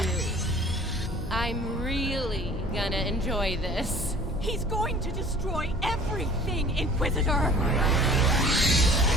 I'm really gonna enjoy this. He's going to destroy everything, Inquisitor!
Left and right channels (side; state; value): both; normal; correlation 0.49